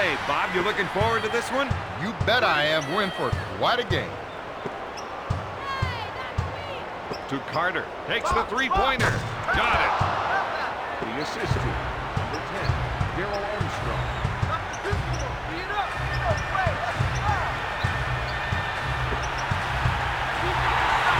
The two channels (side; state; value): both; identical; correlation 1.00